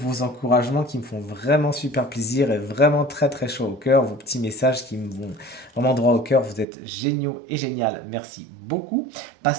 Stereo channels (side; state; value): left; drops out; at 6.7 s